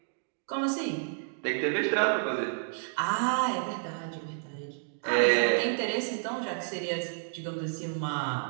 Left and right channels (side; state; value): left; silent; digital silence